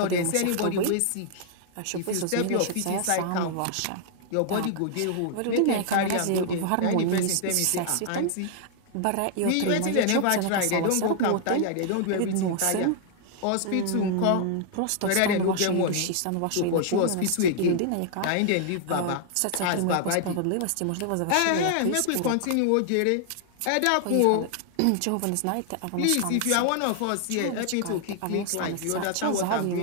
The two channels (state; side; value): different; both; correlation 0.00